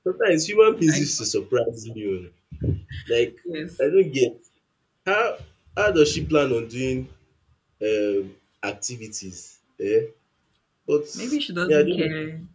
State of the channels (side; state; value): both; identical; correlation 1.00